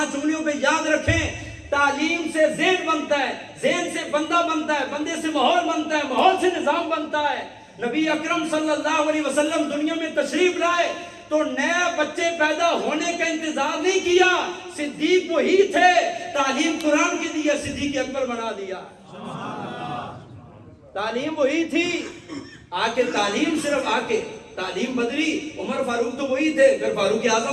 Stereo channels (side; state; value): both; identical; correlation 1.00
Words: انگلیوں پہ یاد رکھیں، تعلیم سے ذہن بنتا ہے، ذہن سے بندہ بنتا ہے، بندے سے ماحول بنتا ہے، ماحول سے نظام بنتا ہے۔ نبی اکرم صلی اللہ علیہ وسلم دنیا میں تشریف لائے تو نئے بچے پیدا ہونے کا انتظار نہیں کیا، صدیق وہی تھے، تعلیم قرآن کی دی ہے، صدیق اکبر بنا دیا۔ تعلیم وہی تھی، آکے تعلیم صرف آکے تعلیم بدلی، عمر فاروق تو وہی تھے، پھر فاروق